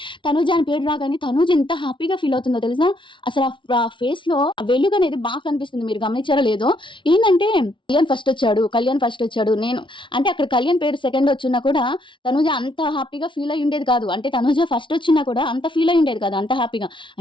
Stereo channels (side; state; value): right; late; 0.24 ms